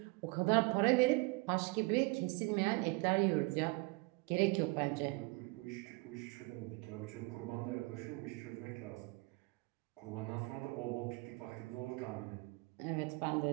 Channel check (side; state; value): left; quieter; 26.5 dB